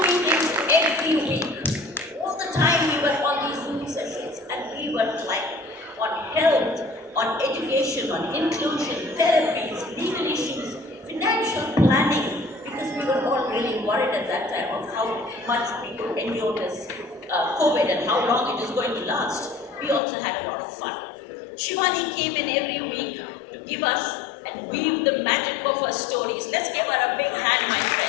meetings every week. All the time we were on these Zoom sessions, and we were like on health, on education, on inclusion, therapies, legal issues, financial planning, because we were all really worried at that time of how much we could endure this COVID and how long it is going to last. We also had a lot of fun. Shivani came in every week to give us and weave the magic of her stories. Let's give her a big hand, my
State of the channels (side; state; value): right; drops out; at 20.0 s